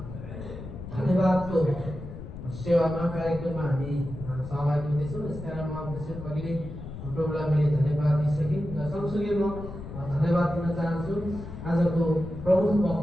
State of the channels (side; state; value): left; noise; rumble, 11 dB below the sound